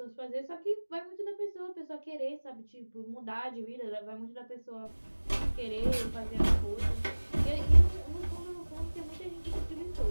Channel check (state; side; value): inverted; both; correlation -1.00